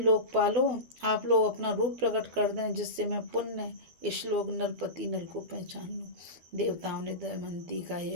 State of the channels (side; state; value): left; late; 12 ms